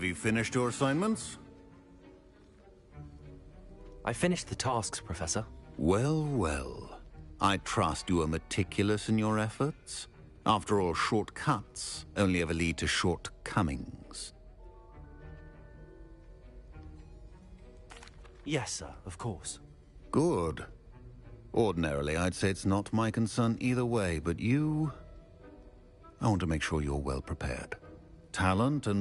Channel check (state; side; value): identical; both; correlation 1.00